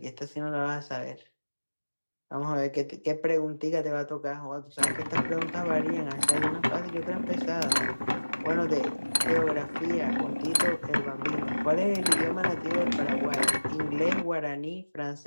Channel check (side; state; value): both; inverted; correlation -1.00